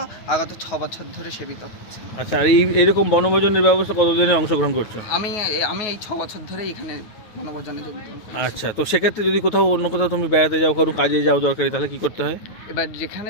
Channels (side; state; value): right; late; 9.4 ms